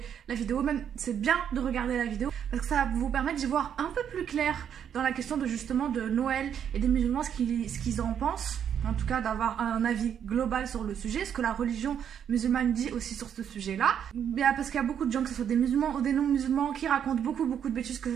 la vidéo, même c'est bien de regarder la vidéo, parce que ça va vous permettre d'y voir un peu plus clair dans la question de justement de Noël et des musulmans, ce qu'ils en pensent. En tout cas d'avoir un avis global sur le sujet, ce que la religion musulmane dit aussi sur ce sujet-là. Parce qu'il y a beaucoup de gens, que ce soit des musulmans ou des non-musulmans, qui racontent beaucoup de bêtises, que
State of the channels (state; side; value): quieter; left; 8.7 dB